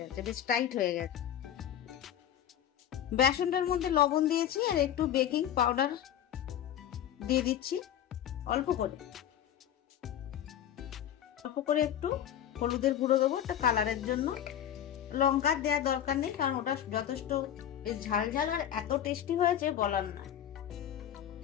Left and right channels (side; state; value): right; quieter; 10.5 dB